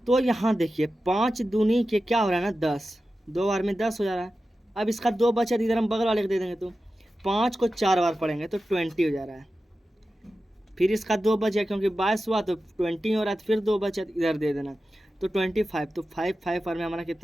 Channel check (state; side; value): normal; both; correlation 0.93